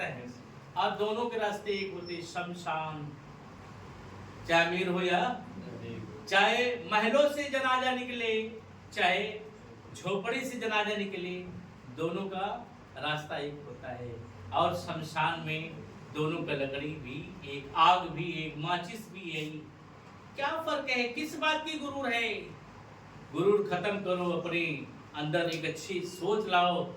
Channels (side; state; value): both; identical; correlation 1.00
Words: है? और दोनों के रास्ते एक होते, शमशान। चाहे अमीर हो या चाहे महलों से जनाजा निकले, चाहे झोपड़ी से जनाजा निकले, दोनों का रास्ता एक होता है। और शमशान में दोनों का लकड़ी भी एक, आग भी एक, माचिस भी एक। क्या फर्क है? किस बात की गुरूर है? गुरूर खत्म करो, अपने अंदर एक अच्छी सोच लाओ,